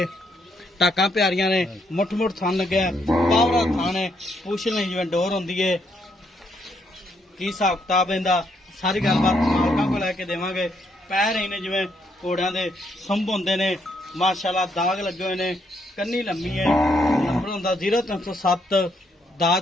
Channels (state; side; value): normal; both; correlation 0.74